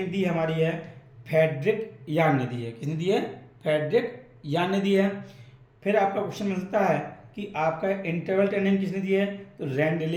दी हमारी है फ्रेडरिक यान ने दी है। किसने दी है, फ्रेडरिक यान ने दी है। फिर आपका क्वेश्चन मिलता है कि आपका इंटरवल ट्रेनिंग किसने दी है, तो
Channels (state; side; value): identical; both; correlation 1.00